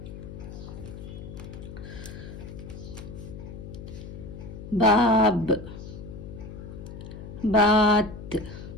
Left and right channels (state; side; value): noise; left; hum, 11 dB below the sound